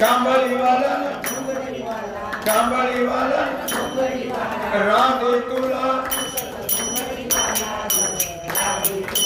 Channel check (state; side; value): identical; both; correlation 1.00